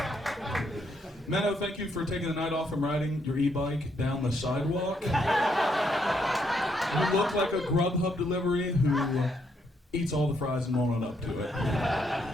Minnow, thank you for taking the night off from riding your e-bike down the sidewalk. You look like a Grubhub delivery who eats all the fries and won't own up to it.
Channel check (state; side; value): normal; both; correlation 0.75